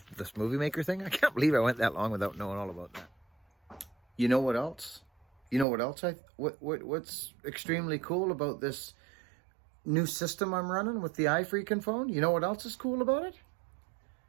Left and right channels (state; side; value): drops out; left; at 5.7 s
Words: this movie maker thing? I can't believe I went that long without knowing all about that. You know what else? You know what else? What's extremely cool about this new system I'm running with the iFreaking phone? You know what else is cool about it?